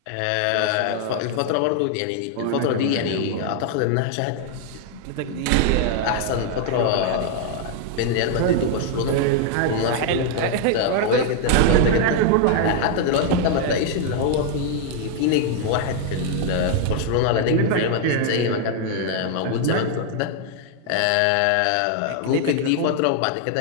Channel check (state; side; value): different; both; correlation 0.00